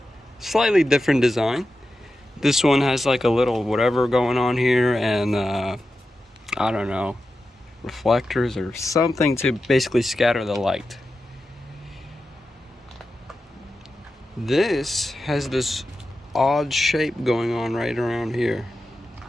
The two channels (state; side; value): normal; both; correlation 0.91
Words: Slightly different design. This one has like a little whatever going on here, and I don't know, reflectors or something to basically scatter the light. This has this odd shape going on right around here.